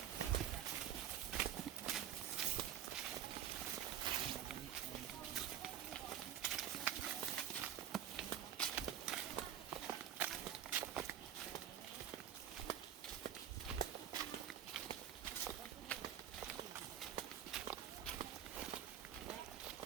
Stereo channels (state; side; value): quieter; left; 10.2 dB